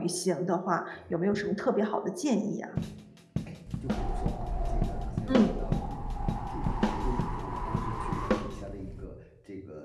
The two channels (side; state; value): both; identical; correlation 1.00